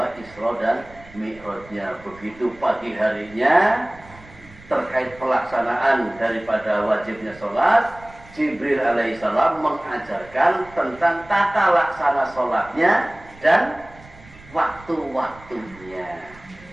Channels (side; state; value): right; noise; rumble, 22 dB below the sound